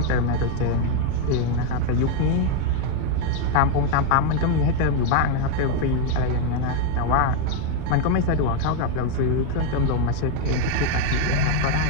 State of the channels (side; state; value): both; different; correlation 0.01